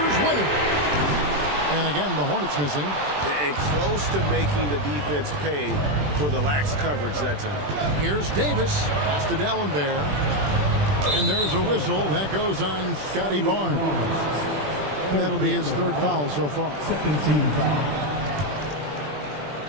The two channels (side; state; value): left; late; 20 ms